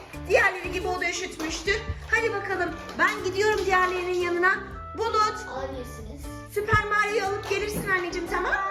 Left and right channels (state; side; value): identical; both; correlation 1.00